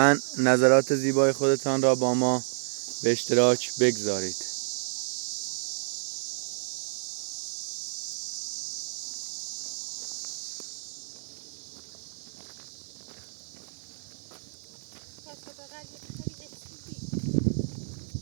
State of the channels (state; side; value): silent; left; digital silence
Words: نظرات زیبای خودتان را با ما به اشتراک بگذارید.